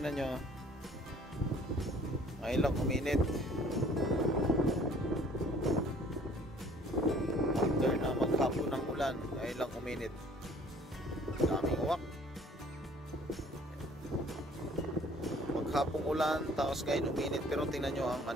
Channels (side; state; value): both; normal; correlation 0.55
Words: nyo. Ngayon lang uminit. After na maghapon ng ulan, ngayon lang uminit. Daming uwak. Maghapong ulan, tapos ngayon uminit. Pero tingnan nyo ang